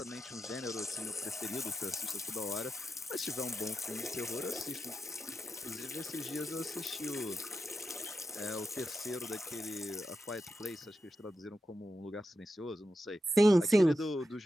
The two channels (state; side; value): normal; both; correlation 0.88